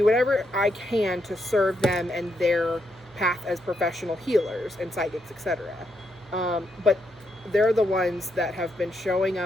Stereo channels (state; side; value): normal; both; correlation 0.79